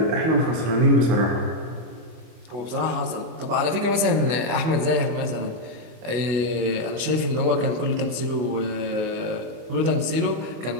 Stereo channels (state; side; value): late; left; 25 ms